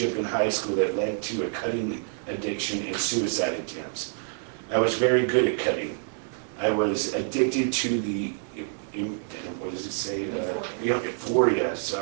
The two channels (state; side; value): silent; left; digital silence